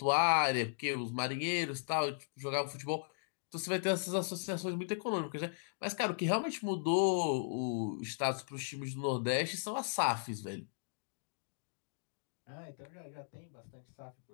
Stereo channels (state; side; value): silent; right; digital silence